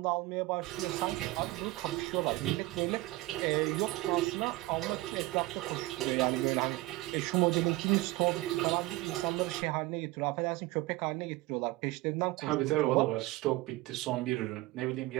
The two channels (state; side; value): quieter; left; 19.8 dB